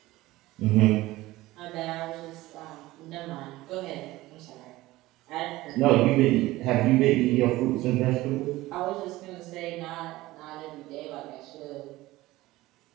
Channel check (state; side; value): quieter; left; 18.0 dB